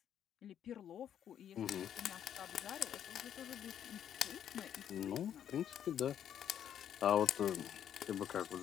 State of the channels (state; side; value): quieter; right; 9.7 dB